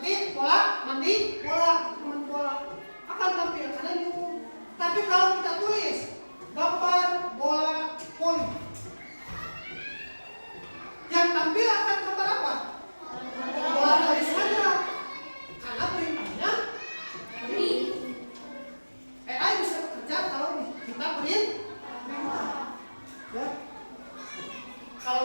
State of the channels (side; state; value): both; inverted; correlation -1.00